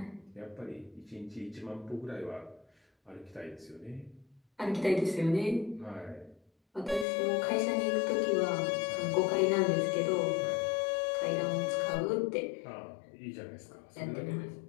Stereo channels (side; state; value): right; drops out; at 7.1 s